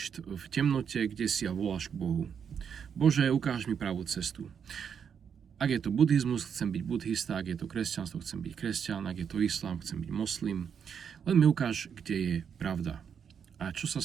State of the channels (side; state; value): left; quieter; 7.4 dB